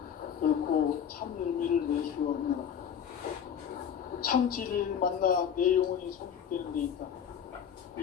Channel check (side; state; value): right; quieter; 8.3 dB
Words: 결코 참 열매를 낼 수 없노라. 참치를 만나 내 영혼이 성숙되는 데 있다.